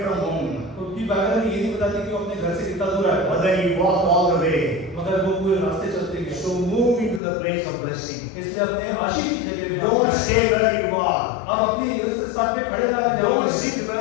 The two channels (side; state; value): right; drops out; at 7.2 s